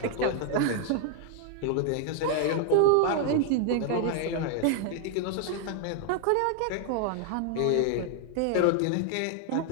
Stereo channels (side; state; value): both; different; correlation 0.00